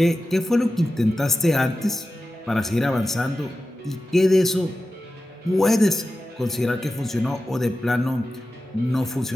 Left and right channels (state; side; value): normal; both; correlation 0.93